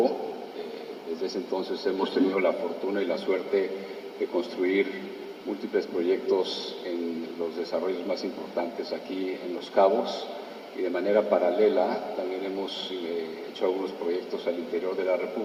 Desde ese entonces hemos tenido la fortuna y la suerte de construir múltiples proyectos en los desarrollos más importantes aquí en Los Cabos, y de manera paralela también hemos hecho algunos proyectos al interior de la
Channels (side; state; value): both; identical; correlation 1.00